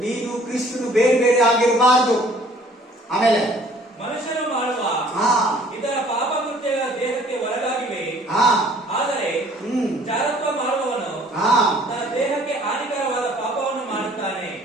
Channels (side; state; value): both; normal; correlation 0.56